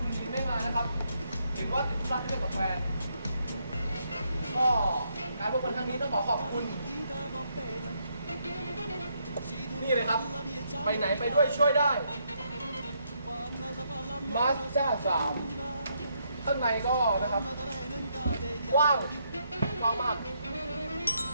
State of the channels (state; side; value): inverted; both; correlation -0.75